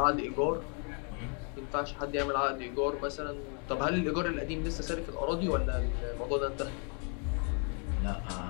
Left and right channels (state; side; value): quieter; right; 38.4 dB